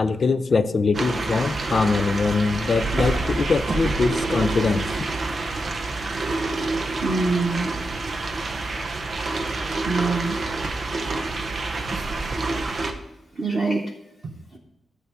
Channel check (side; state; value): both; normal; correlation 0.86